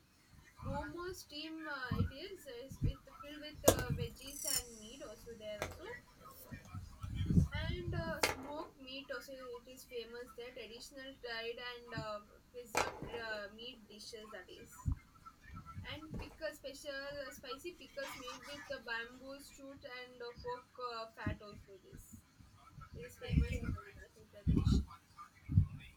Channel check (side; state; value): both; identical; correlation 1.00